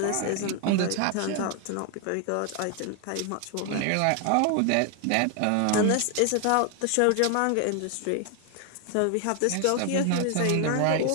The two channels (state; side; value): different; both; correlation 0.00